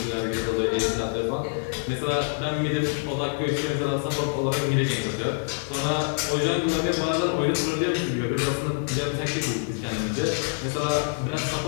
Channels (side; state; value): right; silent; 61 dB below the other